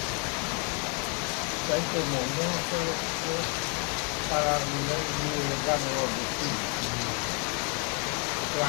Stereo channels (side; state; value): right; quieter; 36.5 dB